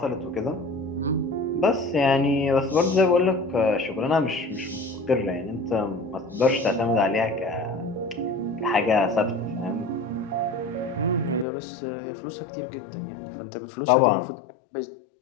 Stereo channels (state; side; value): drops out; right; at 11.5 s